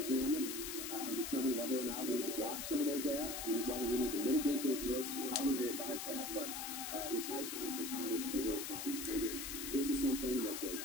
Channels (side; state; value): left; noise; hiss, 5 dB below the sound